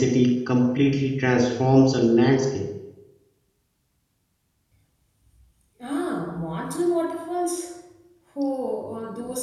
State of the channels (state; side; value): identical; both; correlation 1.00